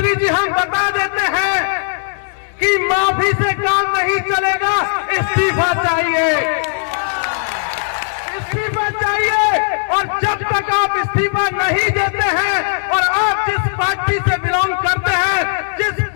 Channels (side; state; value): right; silent; digital silence